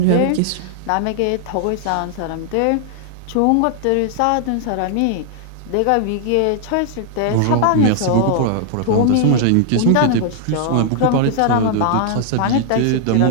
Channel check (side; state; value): both; different; correlation 0.00